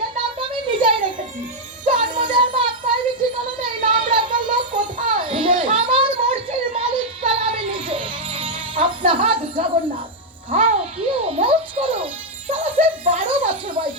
নামটা আমি নিজেই রেখেছি, জন্ম দেওয়ার বাপ মায়ের ঠিকানা নেই, নাম রাখার লোক কোথায়? আমার মর্জির মালিক সালা আমি নিজে। আপনার হাত জগন্নাথ, খাও পিও মৌজ করো। সালা সে 12 বছর বয়স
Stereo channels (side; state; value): both; normal; correlation -0.01